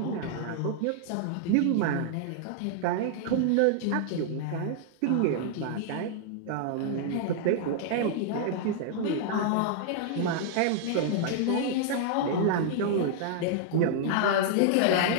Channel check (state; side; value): different; both; correlation -0.01